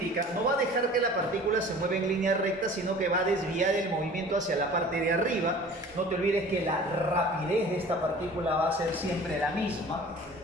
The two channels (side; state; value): both; normal; correlation 0.44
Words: no va a dejar que la partícula se mueva en línea recta, sino que va a desviar el movimiento hacia la parte de arriba. No te olvides que la rapidez de esta partícula va a ser siempre la misma